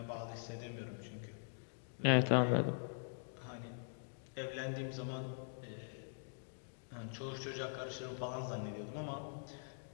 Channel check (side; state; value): right; silent; digital silence